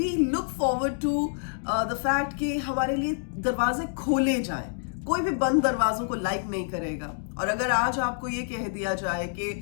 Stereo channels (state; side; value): silent; right; digital silence